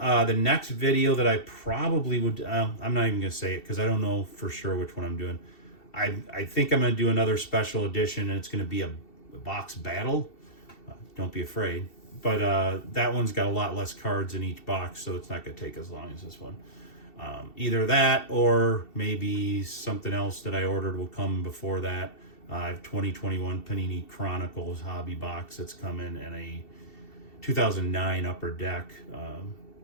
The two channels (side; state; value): right; late; 2.7 ms